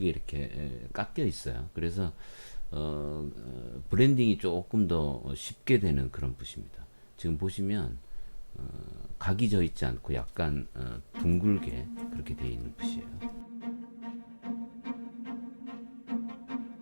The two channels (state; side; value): inverted; both; correlation -1.00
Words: 이렇게 깎여 있어요. 그래서 브랜딩이 조금 더 쉽게 되는 그런 붓입니다. 지금 보시면 각이 져 있지 않고 약간 둥글게 그렇게 되어 있는 붓이에요.